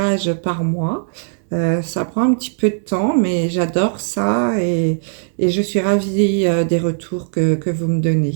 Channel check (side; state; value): left; silent; digital silence